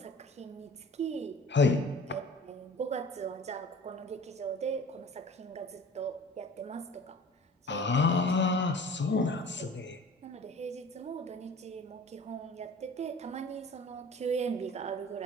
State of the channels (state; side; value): normal; both; correlation 0.44